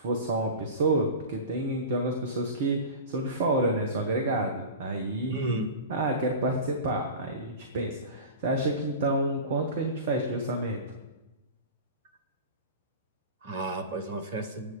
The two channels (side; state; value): both; inverted; correlation -0.31